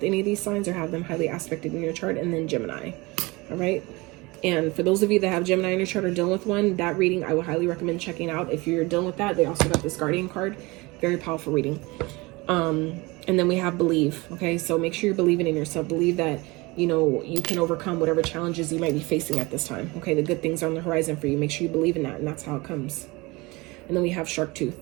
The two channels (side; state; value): left; quieter; 23.8 dB